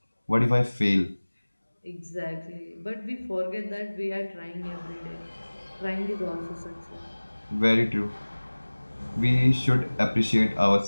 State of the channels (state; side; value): inverted; both; correlation -1.00